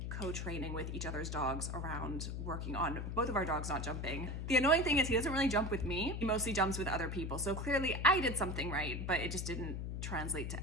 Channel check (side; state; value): left; noise; hum, 4 dB below the sound